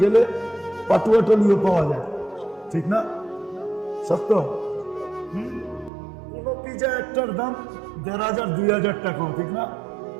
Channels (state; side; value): drops out; left; at 5.9 s